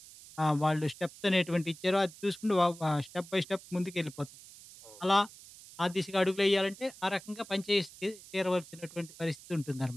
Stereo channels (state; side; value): noise; right; hiss, 19 dB below the sound